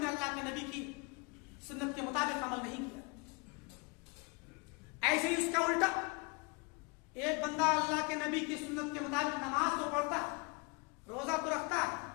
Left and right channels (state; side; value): quieter; right; 29.8 dB